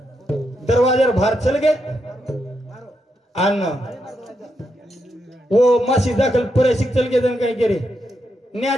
दरवाजार बाहेर चल गे आणि वो मासी दाखल परेशिक चल गे जण काही केरे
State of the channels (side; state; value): both; normal; correlation 0.82